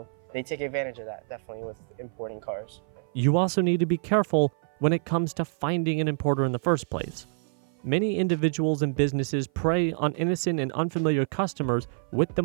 they take advantage of that, definitely, with importing cars. You also need to be careful when it comes to finding an importer in the first place. Many individuals and businesses prey on innocent and unfamiliar customers with the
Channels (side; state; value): left; silent; 56 dB below the other